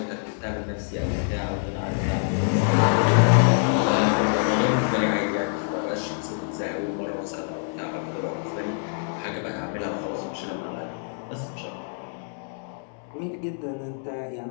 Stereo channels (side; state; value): right; silent; digital silence